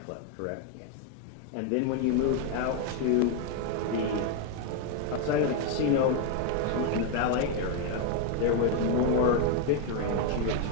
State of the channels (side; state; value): both; different; correlation 0.01